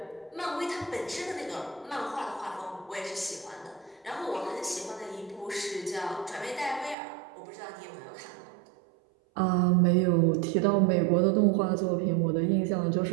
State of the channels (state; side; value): drops out; left; at 7.0 s